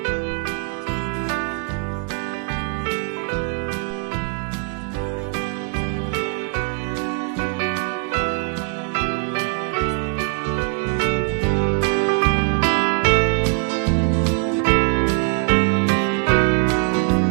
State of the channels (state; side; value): quieter; left; 35.6 dB